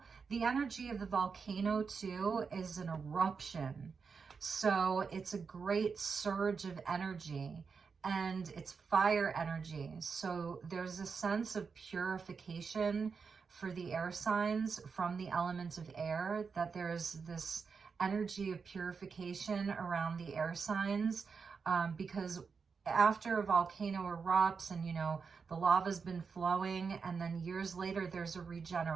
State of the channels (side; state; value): left; quieter; 5.4 dB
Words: the energy of the volcano too is an eruption. So it's a great surge of energy and it's fire energy. So there's a sense of purification for the air signs from the element of air, that there's this energy of purification around the air signs because after a volcano erupts and, you know, the lava's been flowing and then years later there's a